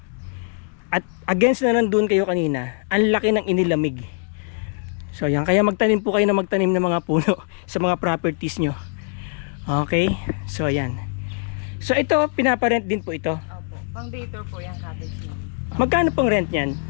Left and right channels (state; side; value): quieter; right; 38.8 dB